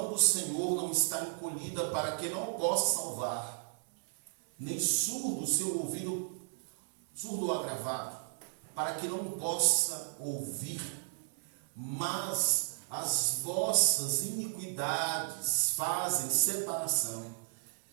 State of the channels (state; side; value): silent; left; 55 dB below the other